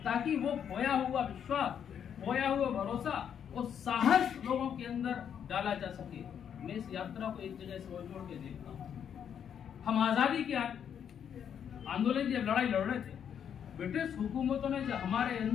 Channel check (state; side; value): quieter; right; 8.4 dB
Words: ताकि वो खोया हुआ विश्वास, खोया हुआ भरोसा और साहस लोगों के अंदर डाला जा सके। मैं इस यात्रा को एक जगह से जोड़ के देखता हूँ। हम आजादी के आंदोलन की जब लड़ाई लड़ रहे थे, ब्रिटिश हुकूमतों ने जब हमारे